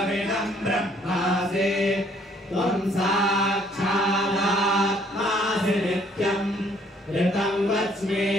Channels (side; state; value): both; normal; correlation 0.63